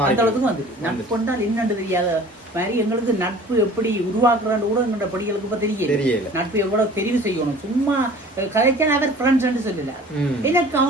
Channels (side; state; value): both; normal; correlation 0.46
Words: அந்த அளவுக்கு வந்து நட்பு என்றால் என்னன்னு தெரியாத மாதிரி எங்களுக்கு நட்பு எப்படி உருவாக்குறான்னு கூட எங்களோட படிகளுக்கு இப்ப தெரியல. நட்பு எவ்வளவு தெரிவு செய்யணும். சும்மா கதைச்சா அவர் ஃப்ரெண்ட்ஸ் சொல்லல, எனக்கு